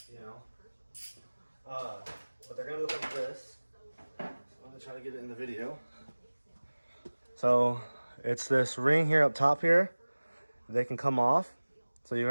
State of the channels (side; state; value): both; inverted; correlation -1.00